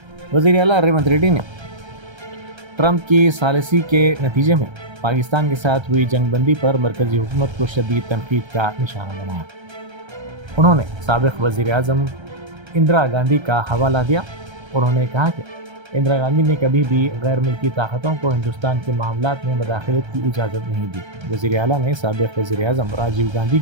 वज़ीर आला रेवंत रेड्डी ने ट्रंप की सालिसी के नतीजे में पाकिस्तान के साथ हुई जंगबंदी पर मरकजी हुकूमत को शदीद तनकीद का निशाना बनाया। उन्होंने साबिक़ वज़ीर आज़म इंदिरा गांधी का हवाला दिया। उन्होंने कहा कि इंदिरा गांधी ने कभी भी गैर मुल्की ताकतों को हिंदुस्तान के मामलात में मदाखलत की इजाज़त नहीं दी। वज़ीर आला ने साबिक़ वज़ीर आज़म राजीव गांधी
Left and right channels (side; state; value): left; late; 1.3 ms